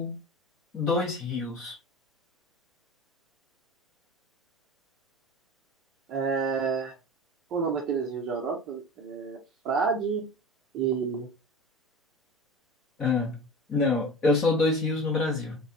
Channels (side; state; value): both; normal; correlation 0.33